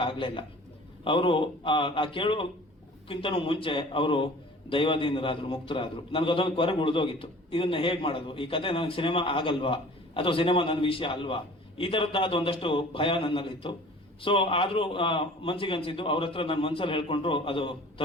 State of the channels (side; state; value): both; normal; correlation 0.46